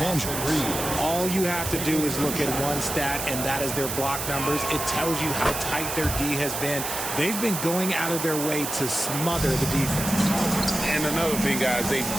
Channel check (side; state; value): right; noise; hiss, 4 dB below the sound